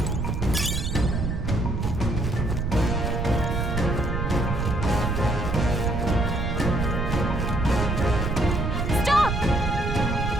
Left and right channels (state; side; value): noise; right; rumble, 1 dB below the sound